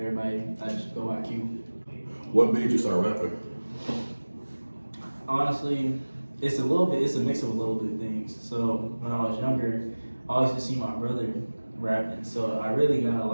I just go by Q. What made you start rapping? Honestly, it's a mix of a little bit of things. So when I was younger, I always used to see my brother rapping, so I really got a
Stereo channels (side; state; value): both; inverted; correlation -1.00